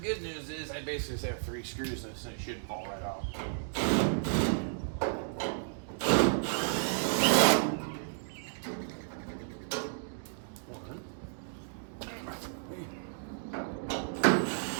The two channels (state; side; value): silent; left; digital silence